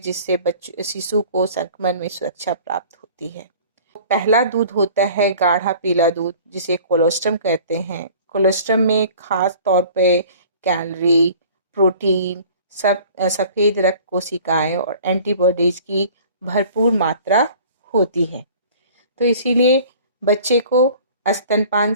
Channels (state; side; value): inverted; both; correlation -0.47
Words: बच्चे शिशु को संक्रमण में सुरक्षा प्राप्त होती है। पहला दूध होता है गाढ़ा पीला दूध, जिसे कोलोस्ट्रम कहते हैं। कोलोस्ट्रम में खास तौर पे कैलोरी, प्रोटीन, सफ़ेद रक्त कोशिकाएं और एंटीबॉडीज की भरपूर मात्रा होती है। तो इसीलिए बच्चे को स्तनपान